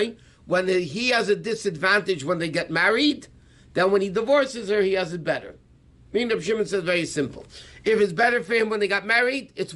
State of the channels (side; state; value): both; identical; correlation 1.00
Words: when he has a disadvantage when they get married, then when he divorces her, he has it better. Meaning Reb Shimon says very simple. If it's better for him when they got married, it's